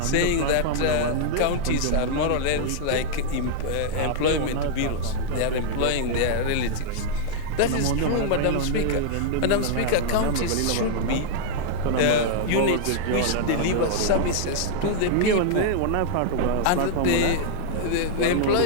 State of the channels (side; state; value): both; different; correlation -0.01